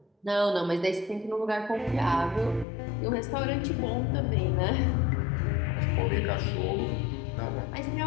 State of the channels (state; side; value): drops out; right; at 2.7 s